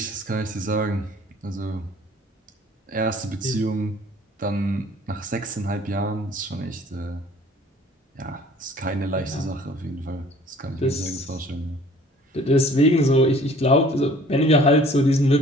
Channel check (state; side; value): normal; both; correlation 0.52